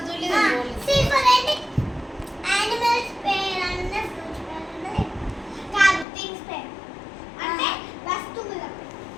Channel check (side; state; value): right; drops out; at 6.1 s